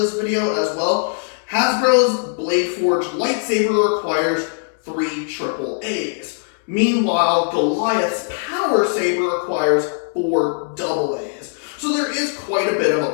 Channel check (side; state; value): right; silent; 66 dB below the other